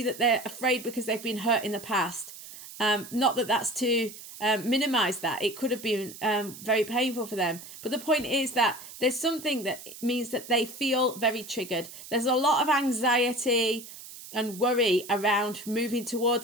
that they're afraid because they've been hurt in the past. Not that that's to minimize that. It could have been very painful for them. But the point is that there's something that means that they feel very triggered. There's a lot of anxiety and worry around moving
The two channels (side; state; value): right; noise; hiss, 15 dB below the sound